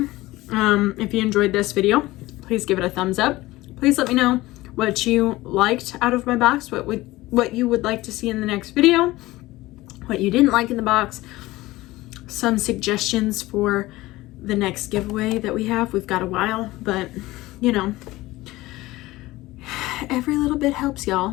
If you enjoyed this video, please give it a thumbs up. Please let me know what you liked out of my box, what you would like to see in the next video, what you didn't like in the box, some suggestions for the next giveaway that we have. We've got a while, but you know, every little bit helps,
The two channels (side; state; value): right; quieter; 18.5 dB